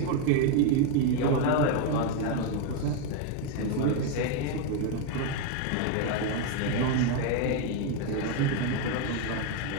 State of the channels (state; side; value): different; both; correlation 0.01